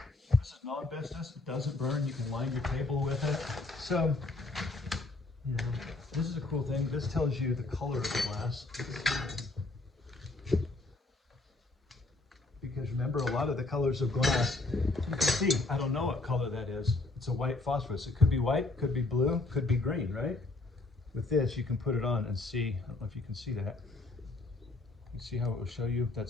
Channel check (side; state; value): right; quieter; 3.1 dB